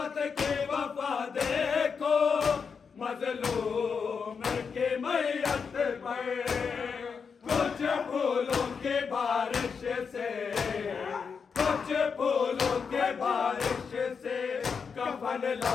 کے وفا دیکھو مظلوم کے میت پر کچھ پھولوں کے بارش سے کچھ پھولوں کے بارش سے کفن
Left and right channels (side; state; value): right; quieter; 5.9 dB